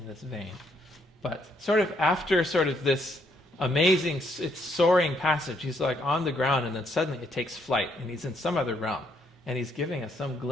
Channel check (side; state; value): both; normal; correlation 0.72